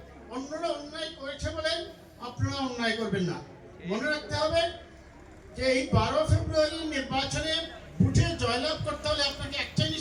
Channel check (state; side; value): identical; both; correlation 1.00